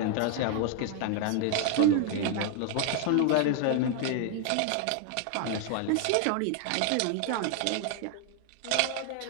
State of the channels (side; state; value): both; different; correlation 0.00